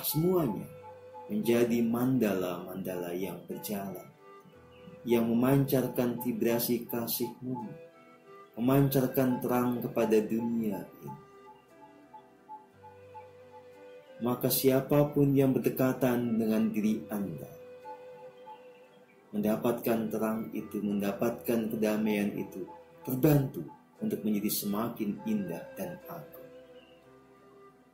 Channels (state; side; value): identical; both; correlation 1.00